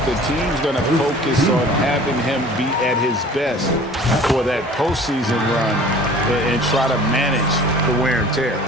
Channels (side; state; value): both; normal; correlation 0.46